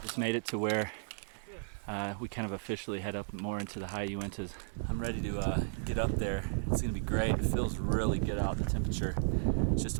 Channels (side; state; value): left; silent; 55 dB below the other